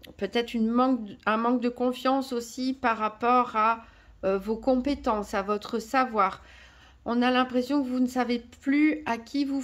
un manque de confiance aussi par rapport à vos compétences, à votre savoir. On a l'impression que vous ne savez plus à qui vous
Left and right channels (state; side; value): identical; both; correlation 1.00